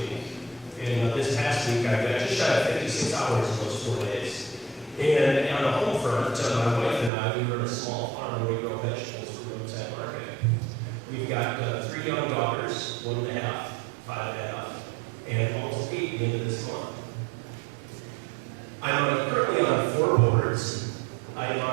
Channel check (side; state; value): left; drops out; at 7.1 s